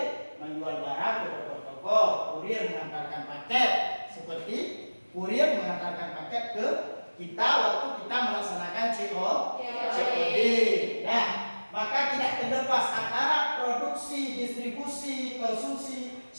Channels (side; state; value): both; inverted; correlation -1.00